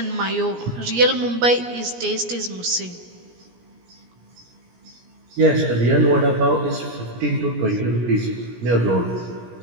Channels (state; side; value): late; left; 17 ms